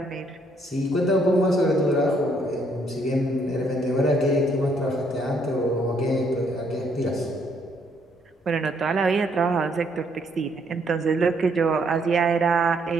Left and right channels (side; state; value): both; normal; correlation 0.69